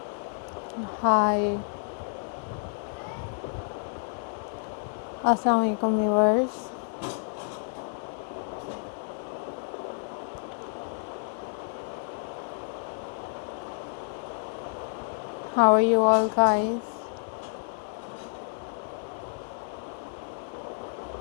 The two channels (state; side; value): silent; right; 58 dB below the other